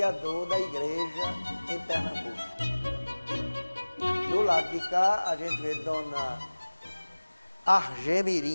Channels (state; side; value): inverted; both; correlation -1.00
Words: da igreja em Pernambuco. Do lado de cá, a gente vê Dona